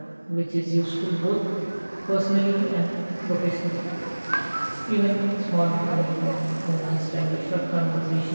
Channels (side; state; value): both; inverted; correlation -1.00